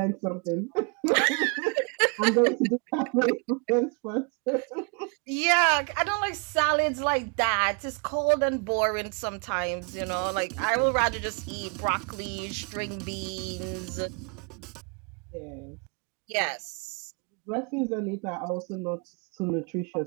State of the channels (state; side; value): quieter; left; 35.5 dB